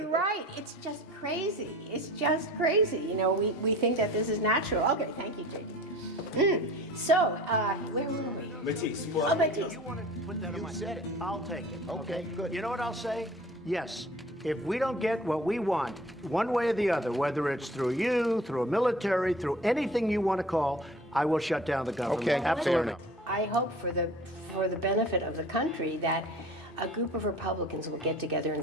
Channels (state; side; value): normal; both; correlation 0.43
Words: right. It's just crazy. It's just crazy. You know, we think that this is natural. Okay, thank you, JD. So, where were we? Matisse. Oh, Matisse. You want to put that on my... You said it. I'll take it. Okay, good. You know what I'll say? Yes. If we don't get what we want, one way or the other, whether it's through you, through a military, through anything you want to call, I will shut down the government. Okay, absolutely. I hope for the benefit of the country that a group of Republicans will get together